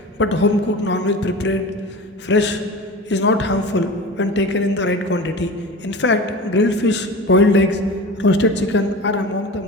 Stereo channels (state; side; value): normal; both; correlation 0.33